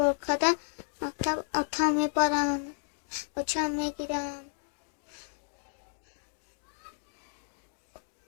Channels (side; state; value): right; silent; digital silence